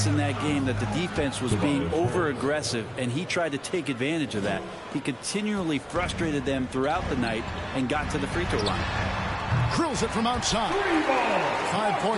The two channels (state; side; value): identical; both; correlation 1.00